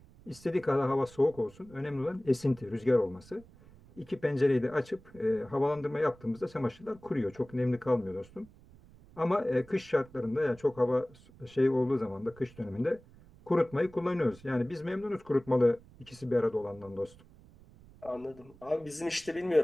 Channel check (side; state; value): right; noise; rumble, 23 dB below the sound